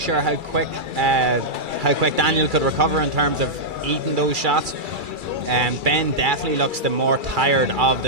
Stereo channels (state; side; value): late; left; 2.3 ms